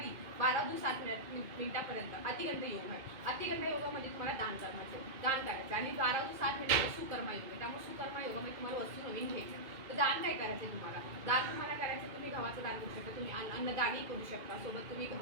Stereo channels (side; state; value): left; late; 2.3 ms